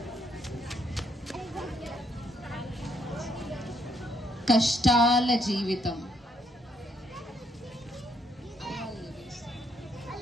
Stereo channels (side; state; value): both; normal; correlation 0.72